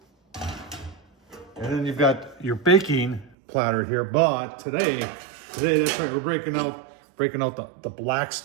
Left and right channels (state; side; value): drops out; left; at 3.3 s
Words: And then you've got your baking platter here, but today that's right, we're breaking out the